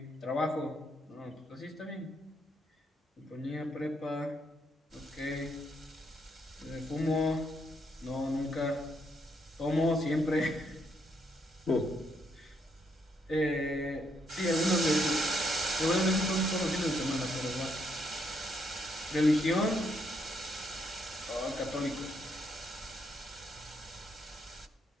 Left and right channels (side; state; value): both; normal; correlation 0.76